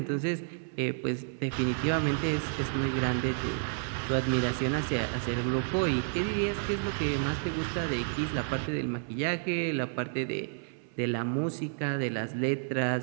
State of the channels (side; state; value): left; silent; 57 dB below the other